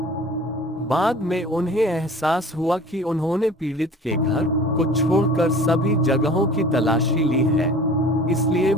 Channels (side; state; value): both; normal; correlation 0.44